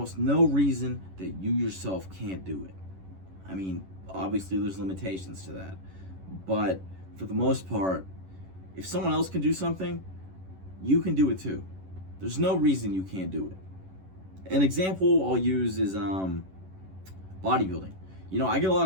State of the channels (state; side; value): late; left; 11 ms